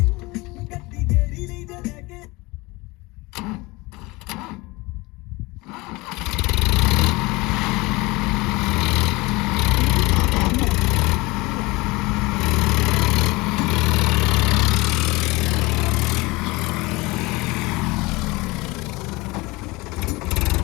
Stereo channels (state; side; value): quieter; right; 23.1 dB